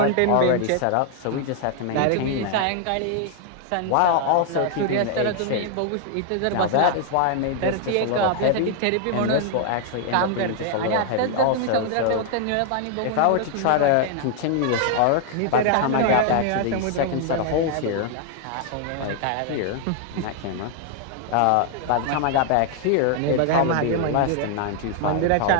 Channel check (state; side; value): different; both; correlation 0.00